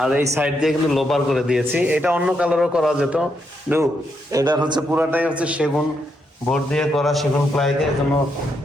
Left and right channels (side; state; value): both; normal; correlation 0.79